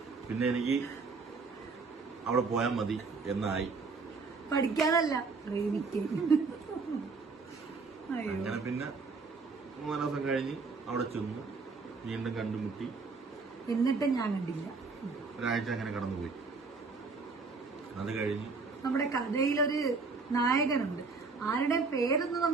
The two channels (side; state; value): left; quieter; 4.4 dB